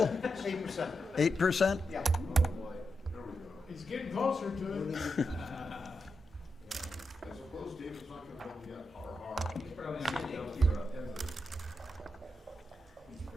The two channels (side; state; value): both; normal; correlation 0.86